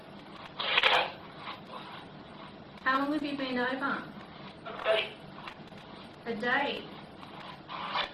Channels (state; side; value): identical; both; correlation 1.00